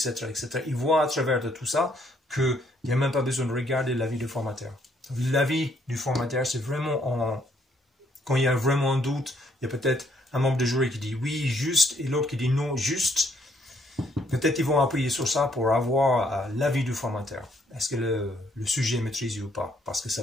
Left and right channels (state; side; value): normal; both; correlation 0.69